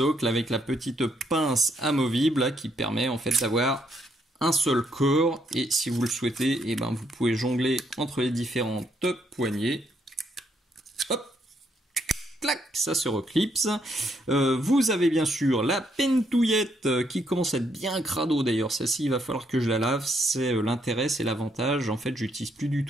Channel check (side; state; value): both; normal; correlation 0.74